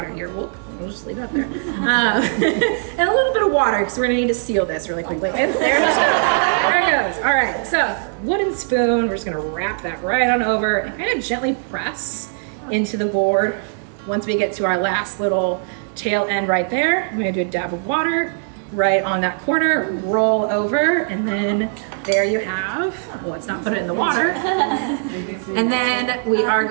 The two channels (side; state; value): left; silent; 66 dB below the other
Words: here. We'll just leave that there. And a little bit of water, because we're gonna need to seal this really quickly. And there it goes. There it goes. All right, so wooden spoon, we're just gonna wrap that right on over and kind of gently press into the board. Once we get to our last little tail end right there, I'm gonna do a dab of water right on that corner, roll over, and then there you have, well, let's not put it in the water. And then we are